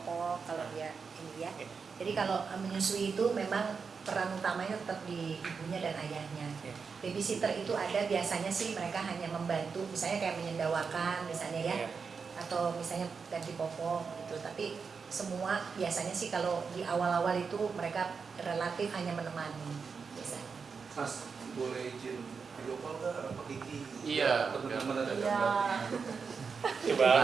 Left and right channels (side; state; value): left; quieter; 5.4 dB